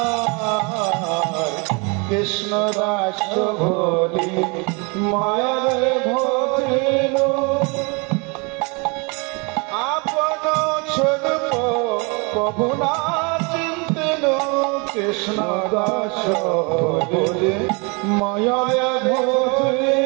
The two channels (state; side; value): quieter; left; 31.1 dB